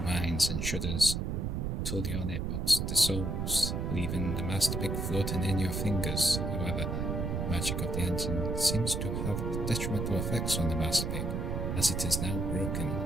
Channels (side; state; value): right; noise; rumble, 1 dB below the sound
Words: mines and shudders till the Ornate box dissolves, leaving the master pick floating in your fingers. However, the magic of the engine seems to have detrimental effects on the master pick, as it is now broken.